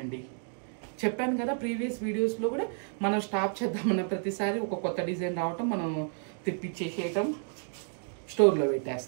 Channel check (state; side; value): silent; left; 57 dB below the other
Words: చెప్పాను కదా ప్రీవియస్ వీడియోస్లో కూడా, మనం స్టాప్ చేద్దామన్న ప్రతిసారి ఒక కొత్త డిజైన్ రావటం, మనం తెప్పించేసేయటం, స్టోర్లో